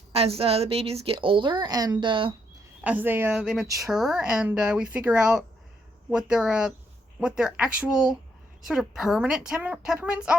babies get older and as they mature and we figure out what their actual sort of permanent temperaments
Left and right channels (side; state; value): both; normal; correlation 0.75